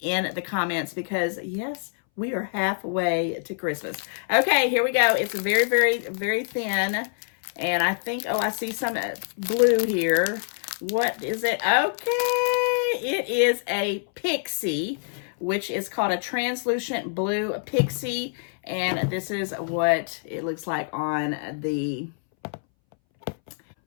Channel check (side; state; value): right; silent; 61 dB below the other